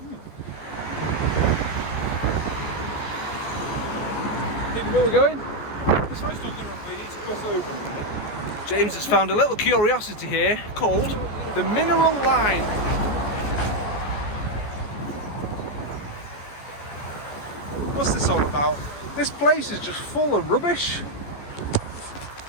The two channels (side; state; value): right; late; 14 ms